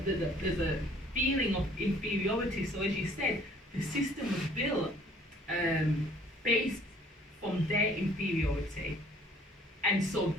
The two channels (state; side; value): normal; both; correlation 0.57